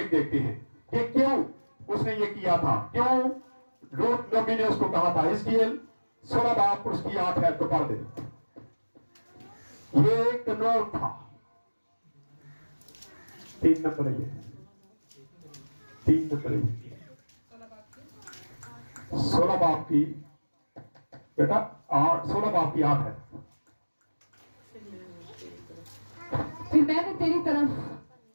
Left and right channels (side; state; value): both; inverted; correlation -1.00